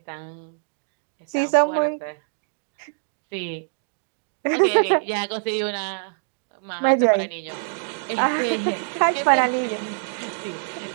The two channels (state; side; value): silent; left; digital silence